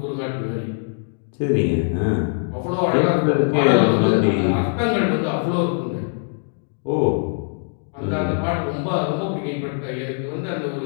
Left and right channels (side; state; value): right; silent; 56 dB below the other